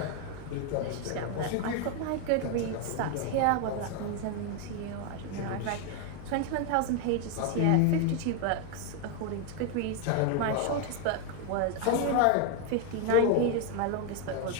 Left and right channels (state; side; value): different; both; correlation 0.01